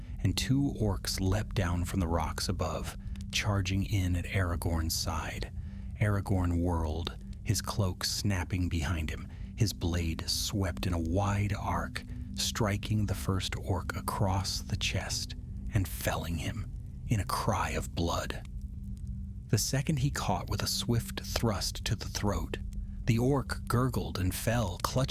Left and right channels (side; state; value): both; identical; correlation 1.00